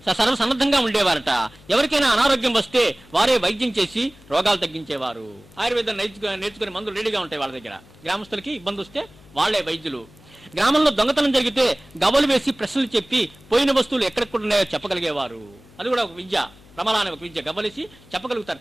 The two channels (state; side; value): noise; left; hum, 25 dB below the sound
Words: సర్వసన్నద్ధంగా ఉండేవారట. ఎవరికైనా అనారోగ్యం వస్తే వారే వైద్యం చేసి రోగాలు తగ్గించేవారు. ఆయుర్వేదం నేర్చుకునే మందులు రెడీగా ఉంటాయి వాళ్ళ దగ్గర. గ్రామస్తులకి ఇబ్బంది వస్తే వాళ్లే వైద్యులు. గ్రామంలో దొంగతనం జరిగితే గవ్వలు వేసి ప్రశ్నలు చెప్పి పోయిన వస్తువులు ఎక్కడెక్కడున్నాయో చెప్పగలిగేవారు. అది కూడా ఒక విద్య, ప్రమల అనే ఒక విద్య. గవ్వలేసి చెప్పగలుగుతారు